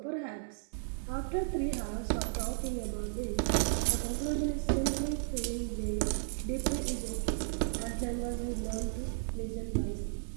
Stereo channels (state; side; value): silent; left; 55 dB below the other